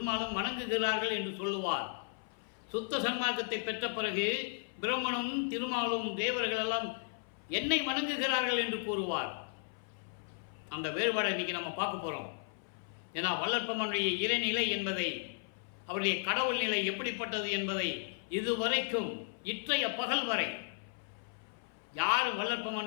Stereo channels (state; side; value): silent; right; 54 dB below the other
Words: வணங்குகிறார்கள் என்று சொல்லுவார். சுத்த சன்மார்க்கத்தை பெற்ற பிறகு பிரம்மனும் திருமாலும் தேவர்கள் எல்லாம் என்னை வணங்குகிறார்கள் என்று கூறுவார். அந்த வேறுபாடை இன்னைக்கு நம்ம பார்க்க போறோம். ஏன்னா வள்ளற்பெருமானுடைய இறைநிலை என்பதை, அவருடைய கடவுள் நிலை எப்படிப்பட்டது என்பதை இதுவரைக்கும் இற்றைய பகல் வரை யாரும்